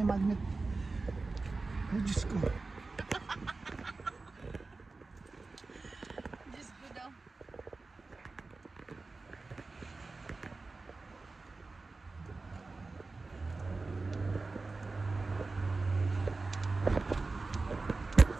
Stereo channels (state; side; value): quieter; left; 3.7 dB